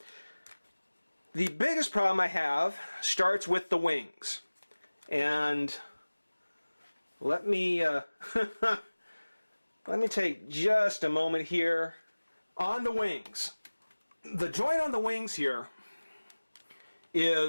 The biggest problem I have starts with the wings. And let me let me take just a moment here on the wings. The joint on the wings here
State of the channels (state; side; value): inverted; both; correlation -1.00